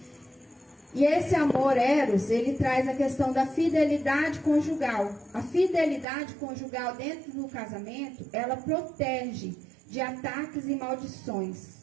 E esse amor eros, ele traz a questão da fidelidade conjugal. A fidelidade conjugal dentro do casamento, ela protege de ataques e maldições.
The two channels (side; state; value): left; drops out; at 6.1 s